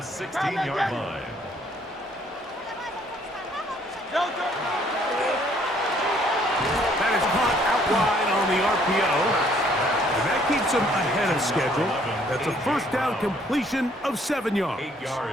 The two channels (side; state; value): both; normal; correlation 0.63